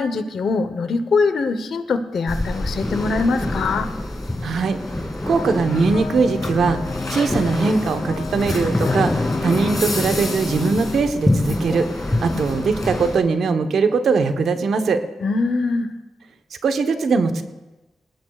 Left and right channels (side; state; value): both; normal; correlation 0.84